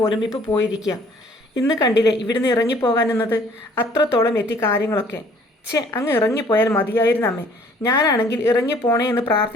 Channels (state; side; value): normal; both; correlation 0.57